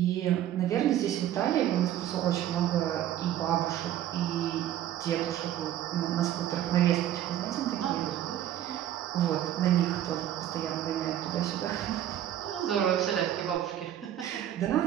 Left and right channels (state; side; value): quieter; left; 11.8 dB